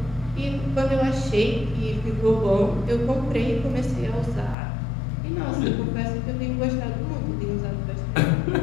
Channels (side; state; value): right; drops out; at 4.5 s